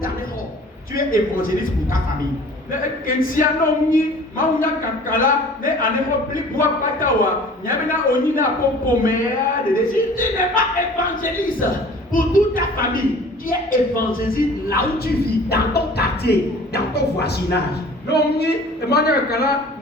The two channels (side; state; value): both; normal; correlation 0.47